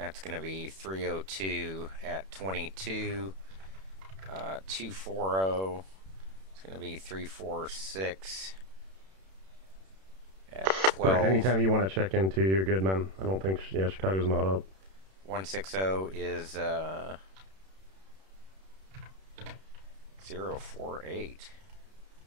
going to be 302 at 22. 240. It's going to be 346 at 12. Right, anytime you want to check into, you're good, man. I don't think, Chicago's not up. 160 is 048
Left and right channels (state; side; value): late; left; 31 ms